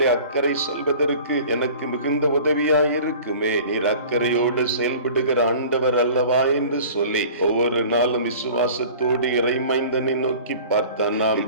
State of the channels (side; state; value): both; inverted; correlation -0.44